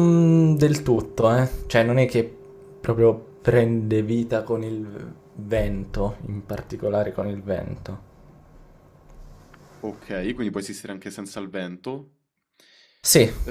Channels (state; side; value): identical; both; correlation 1.00